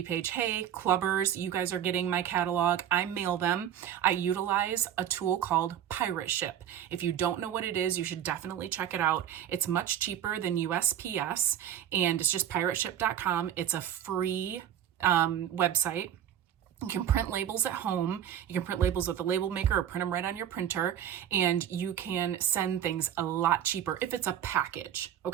page, hey, clubbers, you guys are getting my catalog. I mail them. I utilize a tool called Pirate Ship. If you don't know what it is, you should definitely check it out. It's much cheaper than USPS, and it's just pirateship.com. It's a free website. You can print labels at home. You can print labels with a label maker or print them right on your printer, and you can send things a lot cheaper if it's a package,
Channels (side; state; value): left; quieter; 10.3 dB